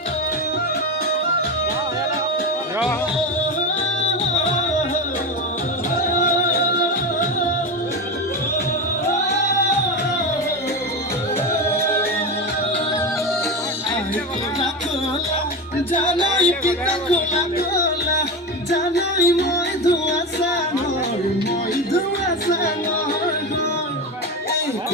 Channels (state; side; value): normal; both; correlation 0.20